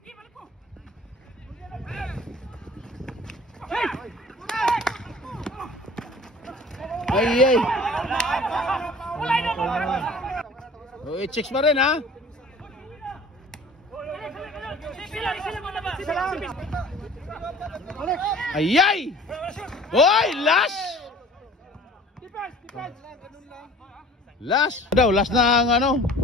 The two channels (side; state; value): both; normal; correlation 0.47